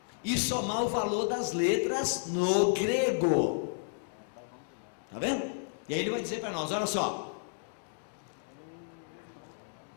e somar o valor das letras no grego. Está vendo? E aí ele vai dizer para nós, olha só,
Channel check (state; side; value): silent; right; digital silence